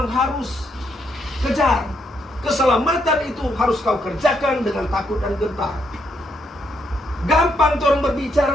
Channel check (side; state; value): both; normal; correlation 0.76